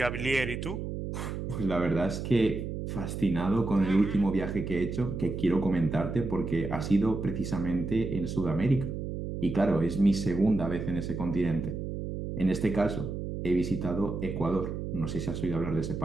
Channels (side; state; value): right; noise; hum, 5 dB below the sound